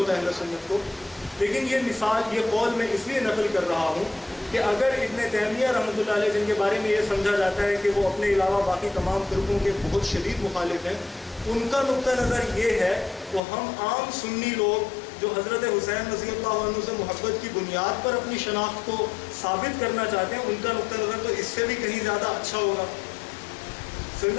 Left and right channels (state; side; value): drops out; right; at 13.4 s